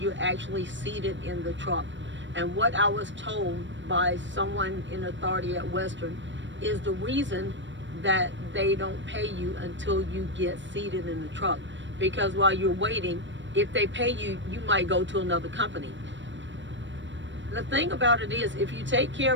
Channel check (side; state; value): left; late; 0.54 ms